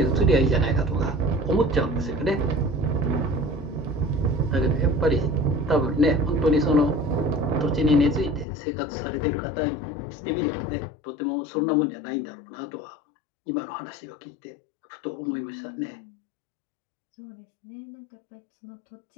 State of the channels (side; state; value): right; drops out; at 8.5 s